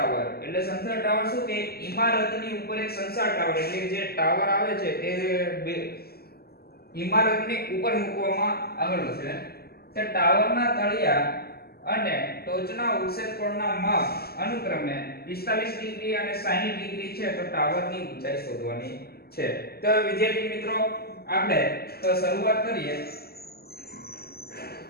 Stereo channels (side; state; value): right; late; 0.46 ms